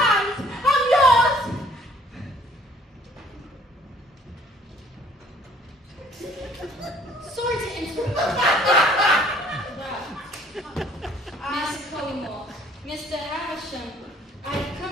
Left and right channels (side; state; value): both; normal; correlation 0.57